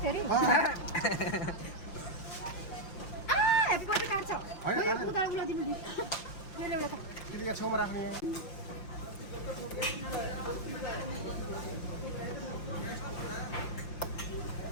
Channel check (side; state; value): right; late; 5.8 ms